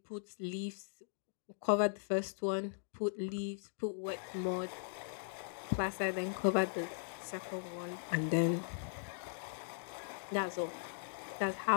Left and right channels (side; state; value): right; silent; digital silence